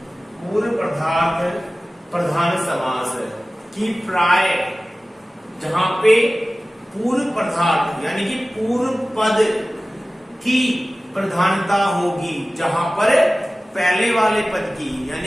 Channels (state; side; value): normal; both; correlation 0.97